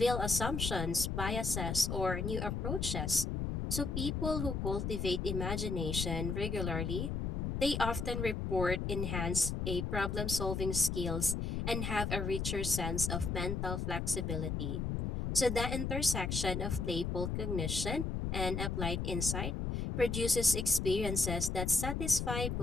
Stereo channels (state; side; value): noise; left; rumble, 2 dB below the sound